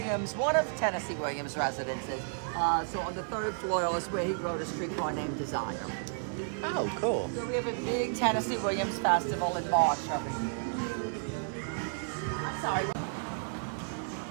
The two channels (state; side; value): silent; left; digital silence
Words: one of Tennessee Williams' residences. So on the 3rd floor is where he wrote A Streetcar Named Desire. Oh, cool. So we have a big Tennessee Williams festival in March every year. I'm sorry.